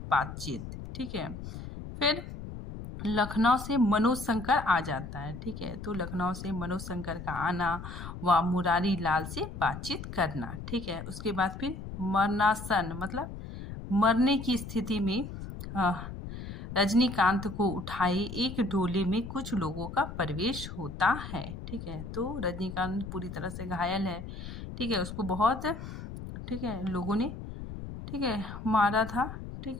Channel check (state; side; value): noise; left; rumble, 9 dB below the sound